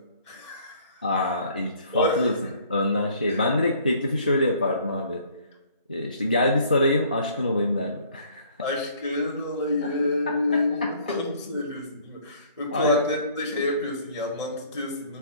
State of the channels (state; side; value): inverted; both; correlation -0.57